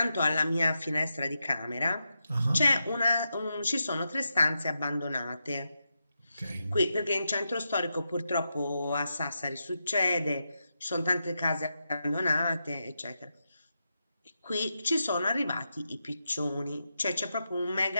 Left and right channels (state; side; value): inverted; both; correlation -0.87